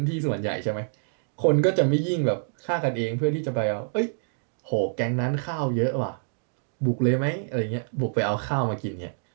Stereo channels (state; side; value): silent; left; digital silence